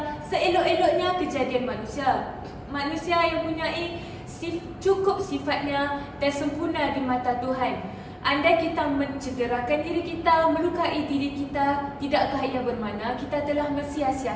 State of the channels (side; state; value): both; identical; correlation 1.00